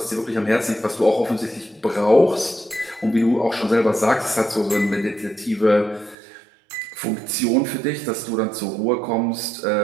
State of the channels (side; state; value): left; drops out; at 6.2 s